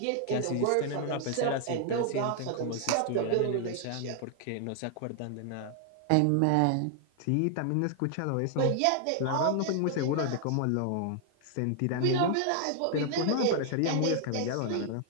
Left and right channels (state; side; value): different; both; correlation 0.00